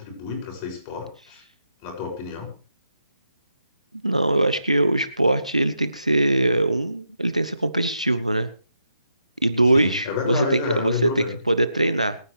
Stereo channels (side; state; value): both; inverted; correlation -0.82